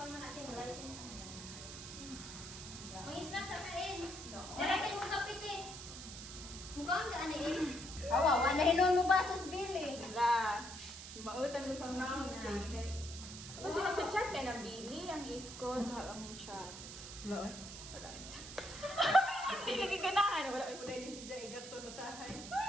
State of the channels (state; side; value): noise; right; hiss, 11 dB below the sound